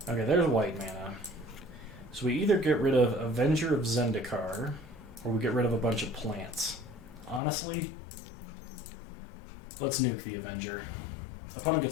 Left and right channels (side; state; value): right; drops out; at 7.4 s